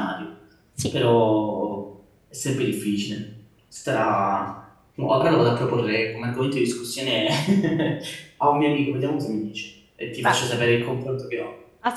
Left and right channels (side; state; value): both; identical; correlation 1.00